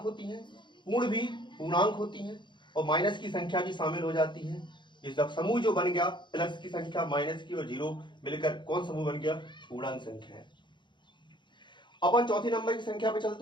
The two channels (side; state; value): right; late; 0.23 ms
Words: होती है, पूर्ण भी पूर्णांक होती है और माइनस की संख्या भी शामिल हो जाती है। इस समूह जो बन गया प्लस की संख्या, माइनस की और 0 मिलकर कौन समूह बन गया? पूर्णांक संख्या है। अपन चौथी नंबर की संख्या पे